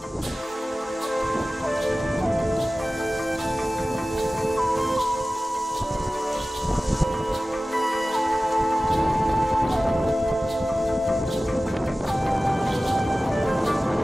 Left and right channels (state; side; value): normal; both; correlation 0.96